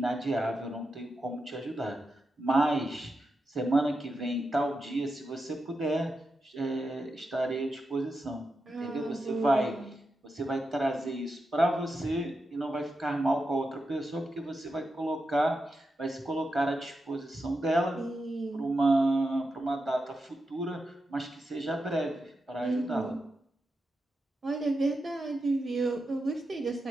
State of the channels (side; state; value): both; normal; correlation 0.88